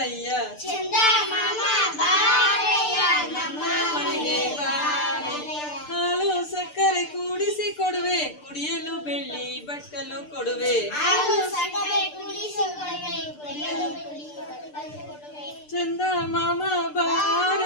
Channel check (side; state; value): right; late; 6.7 ms